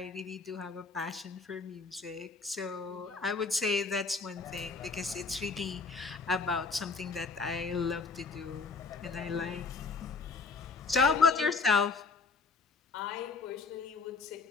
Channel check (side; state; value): right; quieter; 4.5 dB